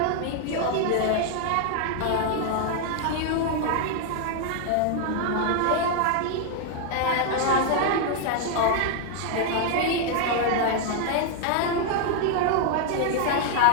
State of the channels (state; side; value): different; both; correlation 0.00